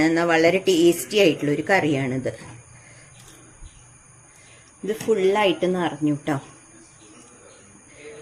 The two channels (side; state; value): both; identical; correlation 1.00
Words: എന്നാൽ വളരെ ടേസ്റ്റി ആയിട്ടുള്ളൊരു കറിയാണിത്. ഇത് ഫുള്ളായിട്ട് നിറഞ്ഞു കേട്ടോ.